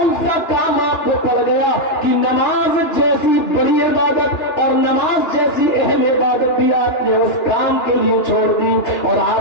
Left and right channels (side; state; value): right; late; 2.9 ms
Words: سا کام آپ کو پڑ گیا کہ نماز جیسی بڑی عبادت اور نماز جیسی اہم عبادت بھی آپ نے اس کام کے لیے چھوڑ دی اور